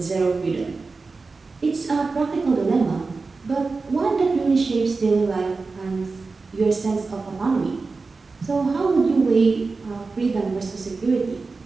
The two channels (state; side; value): quieter; left; 4.1 dB